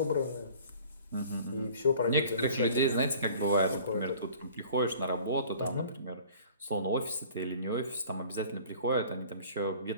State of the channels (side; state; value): both; inverted; correlation -0.48